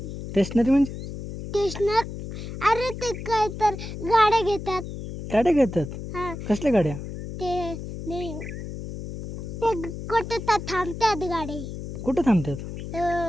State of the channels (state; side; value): noise; left; hum, 8 dB below the sound